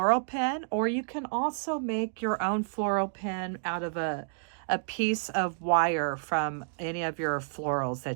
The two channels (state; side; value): silent; left; digital silence